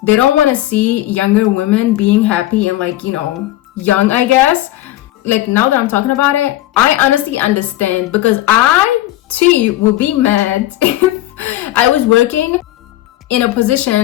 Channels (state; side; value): quieter; right; 15.2 dB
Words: they don't want to see younger women being happy and like, young, I guess. Like now that I'm talking about it, I honestly understand, because I too would be mad if I was working in a